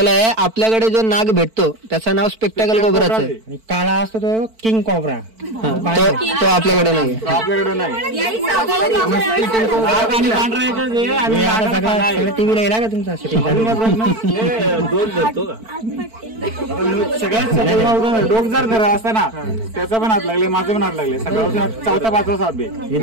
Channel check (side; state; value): left; late; 4.5 ms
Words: आहे. आपल्याकडे जो नाग भेटतो त्याचं नाव स्पेक्टाकल कोबराच आहे. आणि काळा असतो तो किंग कॉबरा. तो आपल्याकडे नाही. आपल्याकडे नाही. सगळं टीव्हीला येला का तुमचा सगळ्यात डोक जर धरा असता ना त्याचा पण हात लागले, माझं पण हात लागले. सकाळपासून 4था 5वा साप आहे.